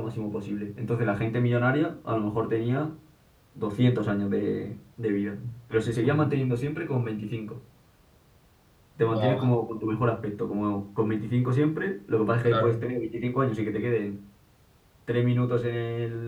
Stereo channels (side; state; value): both; identical; correlation 1.00